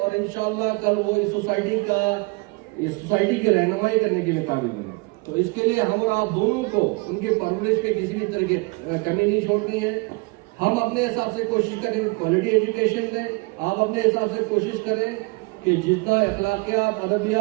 इंशाल्लाह कल वो इस सोसाइटी की रहनुमाई करने के लिए काबिल बने। तो इसके लिए हम और आप दोनों को उनके परवरिश में किसी भी तरह की कमी नहीं छोड़नी है। हम अपने हिसाब से कोशिश करें क्वालिटी एजुकेशन दें, आप अपने हिसाब से कोशिश करें कि जितना अखलाकियात,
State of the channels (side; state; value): left; quieter; 27.8 dB